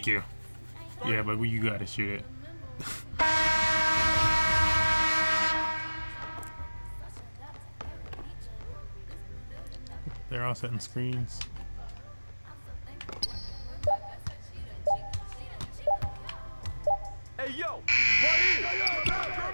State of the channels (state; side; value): inverted; both; correlation -1.00